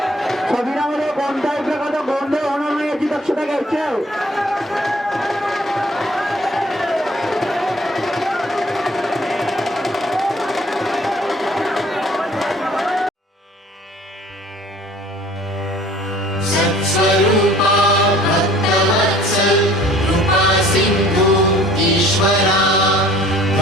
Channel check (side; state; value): both; normal; correlation 0.53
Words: शरीरामध्ये कोणत्याही प्रकारचा गोंधळ होणार नाही याची दक्षता घ्यायची आहे सत्स्वरूपा भक्तवत्सल कृपा सिंधु ईश्वरा